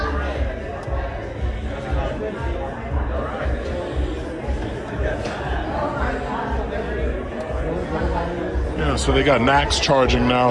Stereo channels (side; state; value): both; identical; correlation 1.00